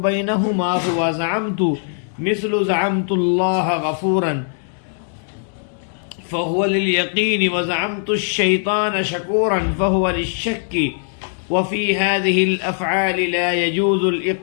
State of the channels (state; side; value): silent; right; digital silence